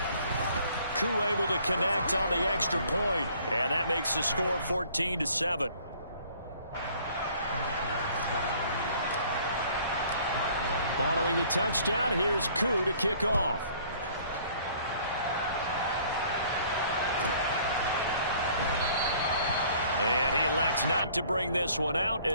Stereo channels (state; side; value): inverted; both; correlation -0.56